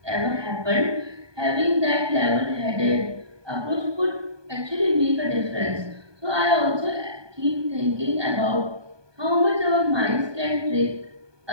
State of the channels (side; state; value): left; late; 1.2 ms